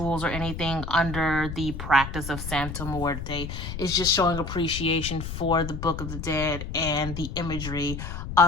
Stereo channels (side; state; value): left; noise; rumble, 7 dB below the sound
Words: or anything under the practice of Santa Muerte. It's just showing appreciation for the Book of the Dead and the imagery